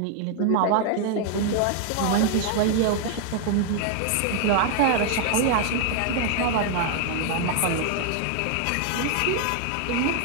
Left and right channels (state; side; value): different; both; correlation 0.00